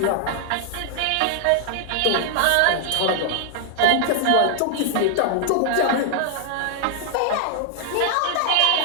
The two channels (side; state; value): both; different; correlation 0.00